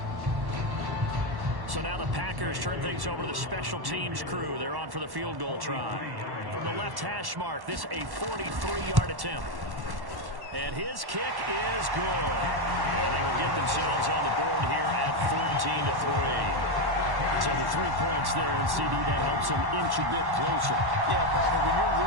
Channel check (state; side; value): late; left; 1.1 ms